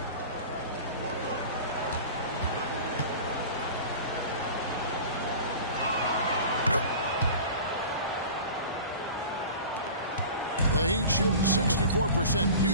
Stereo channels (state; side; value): inverted; both; correlation -0.38